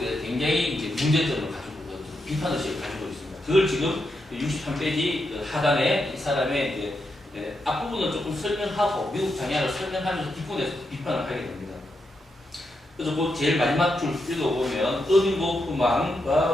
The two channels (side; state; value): both; normal; correlation 0.83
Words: 굉장히 이제 문제점을 가지고 비판의식을 가지고 있습니다. 그걸 지금 63페이지 하단에 이 사람의 이제 앞부분을 조금 설명하고 미국 장애학을 설명하면서 뒷부분에서 비판을 하게 됩니다. 그래서 그 제일 마지막 줄 읽어보면 어빙